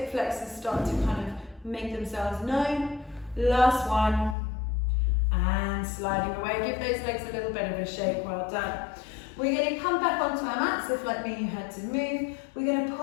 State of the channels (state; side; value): drops out; right; at 4.4 s